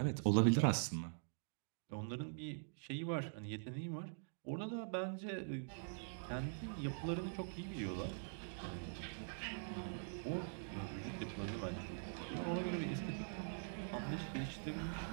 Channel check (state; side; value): silent; left; digital silence